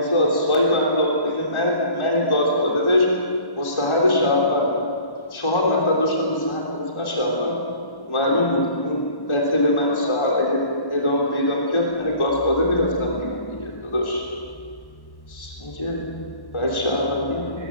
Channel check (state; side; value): late; right; 1.1 ms